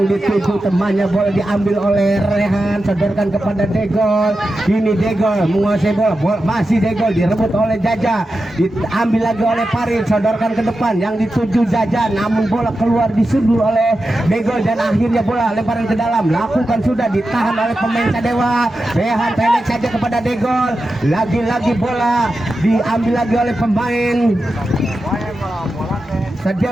dituju temannya, bola diambil oleh Rehan, sodorkan kepada Degol. Ini Degol menguasai bola, masih Degol direbut oleh Jaja, diambil lagi oleh Farid, sodorkan ke depan yang dituju Jaja, namun bola keluar disundur oleh Degol dan akhirnya bola lemparan ke dalam, lakukan sudah, ditahan oleh pemain Sadewa. Rehan pendek saja kepada Degol, lagi-lagi bola diambil lagi oleh pemain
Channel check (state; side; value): normal; both; correlation 0.91